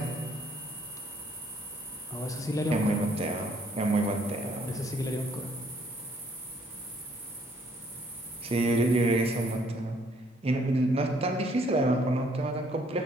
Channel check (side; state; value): both; normal; correlation 0.65